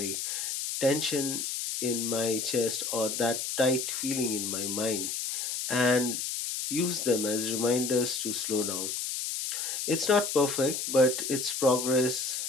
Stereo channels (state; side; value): noise; left; hiss, 3 dB below the sound